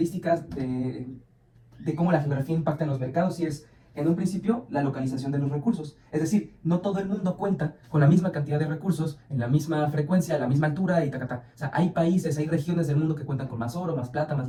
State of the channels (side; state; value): both; identical; correlation 1.00